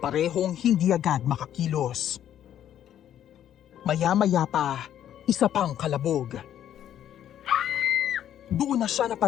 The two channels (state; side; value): quieter; right; 10.8 dB